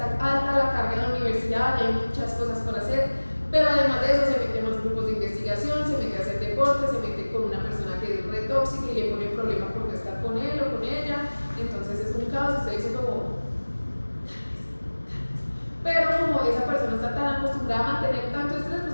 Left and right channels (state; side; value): inverted; both; correlation -1.00